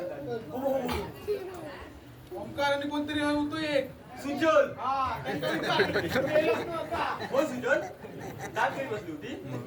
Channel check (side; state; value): both; identical; correlation 1.00